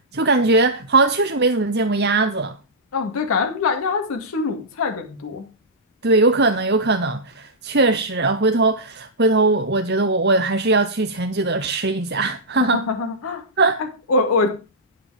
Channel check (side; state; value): both; normal; correlation -0.14